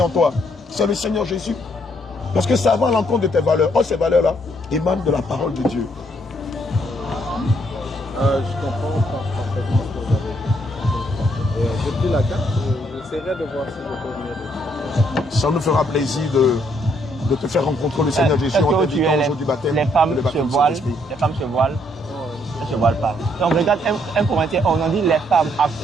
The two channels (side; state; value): both; normal; correlation 0.71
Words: toi? C'est le Seigneur Jésus. Parce que ça va à l'encontre de tes valeurs. Oh, ces valeurs-là émanent de la parole de Dieu. Je comprends parfaitement ce que vous avez dit. J'ai pris la carte, j'essaierai de voir si je peux venir. Ça nous fera plaisir de te faire rencontrer le Seigneur Jésus en t'invitant au jour du baptême. Les femmes se voilent. Les femmes se voilent. Elles ne se voilent pas. Donc regarde un commentaire, on en dit les femmes, à